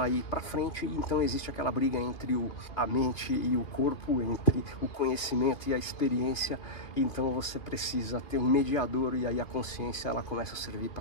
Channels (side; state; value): right; late; 2.7 ms